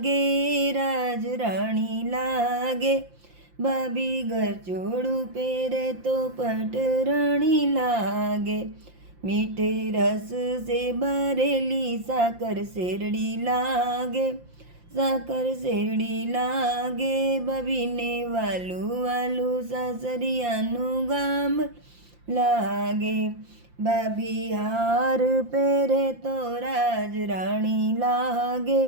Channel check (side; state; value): left; late; 5.7 ms